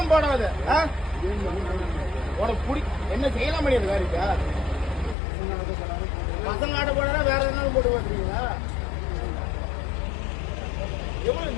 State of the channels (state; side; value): drops out; right; at 5.2 s